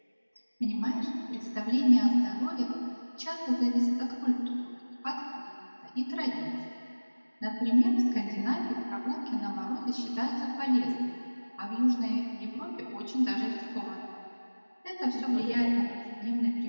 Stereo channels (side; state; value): both; inverted; correlation -1.00